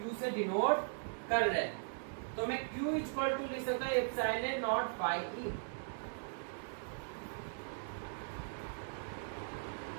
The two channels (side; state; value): left; silent; 52 dB below the other